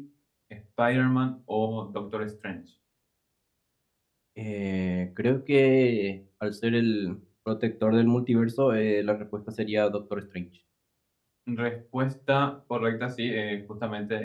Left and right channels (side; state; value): both; identical; correlation 1.00